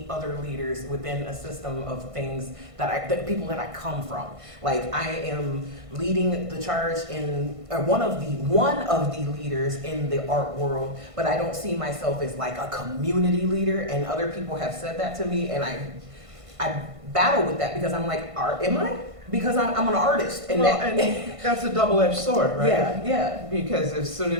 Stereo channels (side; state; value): left; late; 1.5 ms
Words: other leaders within a system of things that people that I come from. Like I am leading the charge in one of the leaders in the art world, but I don't see myself as like a community leader. And other people have said that to me, and I battle with that because I'm like, am I? Because I'm an artist, and Well, and that's a double-edged sword, right? Yeah. Because as soon